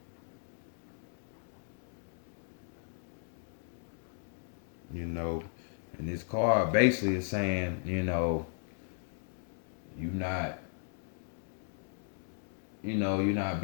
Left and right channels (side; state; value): right; silent; digital silence